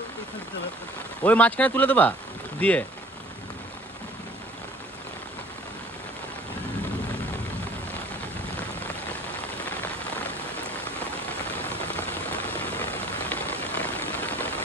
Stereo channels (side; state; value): both; normal; correlation 0.51